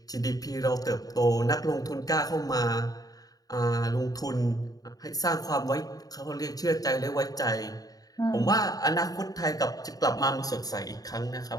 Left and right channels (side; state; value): right; late; 0.18 ms